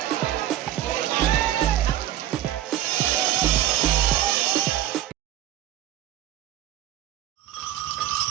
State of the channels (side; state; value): left; quieter; 12.5 dB